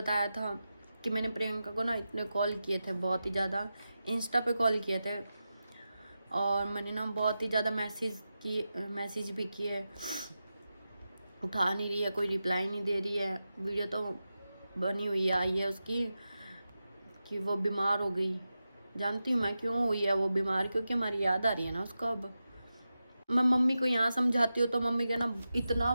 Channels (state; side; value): inverted; both; correlation -0.92